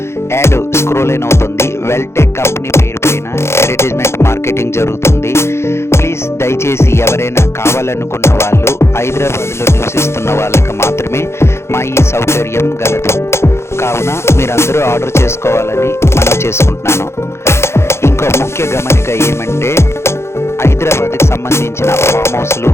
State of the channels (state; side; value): late; right; 0.13 ms